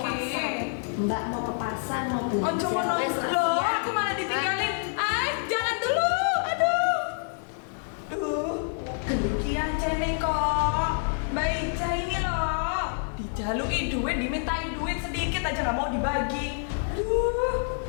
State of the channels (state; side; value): silent; right; 60 dB below the other